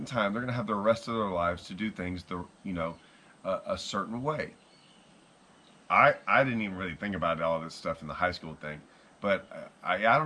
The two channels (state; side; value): identical; both; correlation 1.00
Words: time they're going to have the rest of their lives to do things a certain way. I didn't even really think about all this stuff in the high school thing, but I